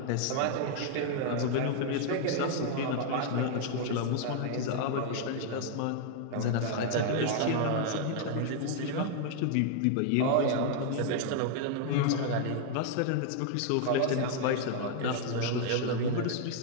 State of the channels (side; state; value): both; different; correlation 0.00